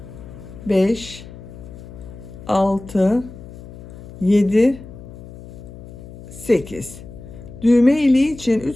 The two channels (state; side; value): noise; left; hum, 15 dB below the sound